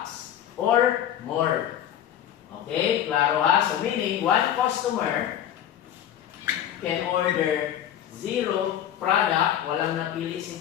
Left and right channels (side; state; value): right; quieter; 10.7 dB